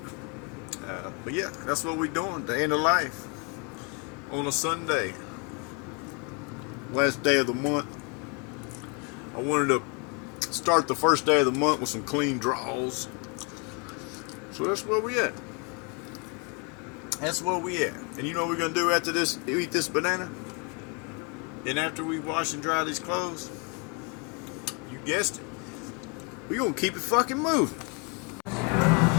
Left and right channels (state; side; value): quieter; right; 33.5 dB